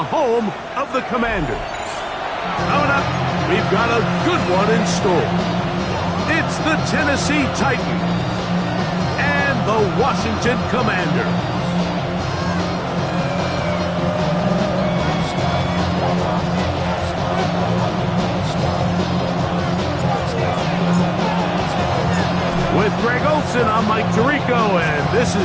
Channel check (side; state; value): both; identical; correlation 1.00